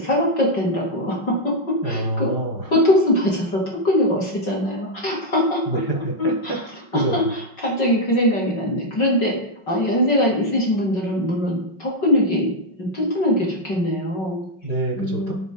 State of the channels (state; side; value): late; right; 5.4 ms